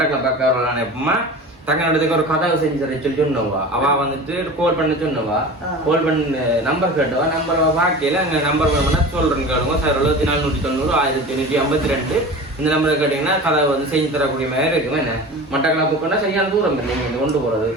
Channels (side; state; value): both; normal; correlation 0.34